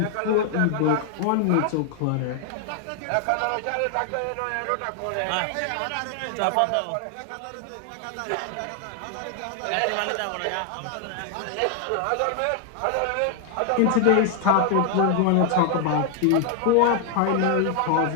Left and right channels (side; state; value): both; different; correlation 0.00